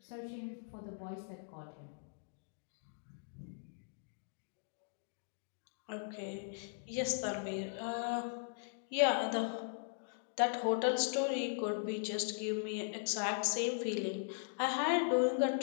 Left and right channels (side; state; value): right; silent; digital silence